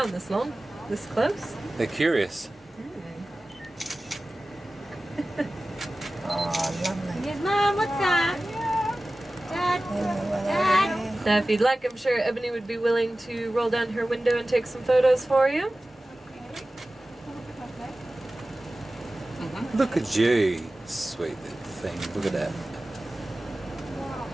this long, this close. They're curious. it. Oh, lovely. Yes, Mom, what's that? Dad. Now, if you'd like, I'm sure Ebony would be willing to roll down her window and take some photos for you. Look at you. Sweet little thing. Look at that.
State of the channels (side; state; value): both; normal; correlation 0.96